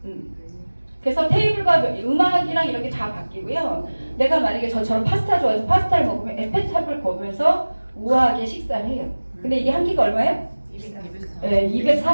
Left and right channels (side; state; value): both; inverted; correlation -1.00